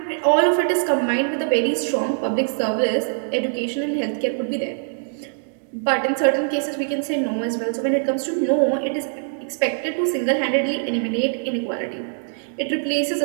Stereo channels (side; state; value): left; silent; digital silence